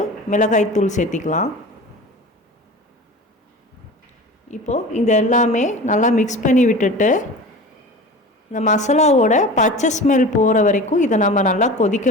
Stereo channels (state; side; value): normal; both; correlation 0.35